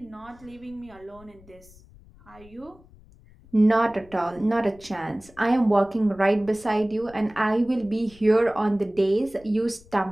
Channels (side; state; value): left; noise; rumble, 25 dB below the sound